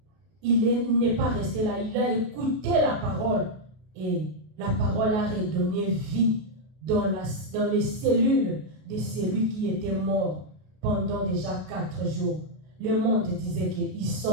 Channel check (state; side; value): late; left; 32 ms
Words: Il n'est pas resté là, il a écouté la parole. Et la parole a redonné vie dans les cellules de celui qui était mort pendant déjà 4 jours. Le monde disait qu'ils